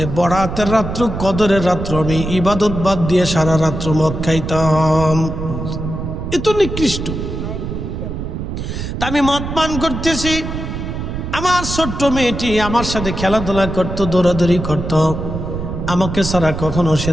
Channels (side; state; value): right; noise; rumble, 5 dB below the sound